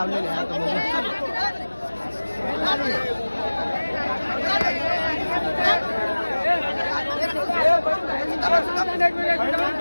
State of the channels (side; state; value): both; inverted; correlation -1.00